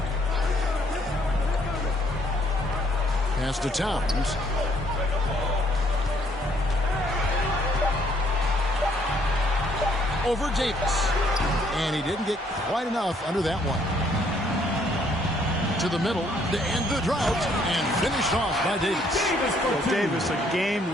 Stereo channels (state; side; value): normal; both; correlation 0.66